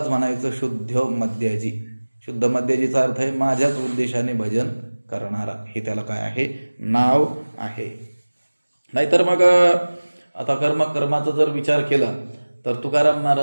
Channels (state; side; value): inverted; both; correlation -1.00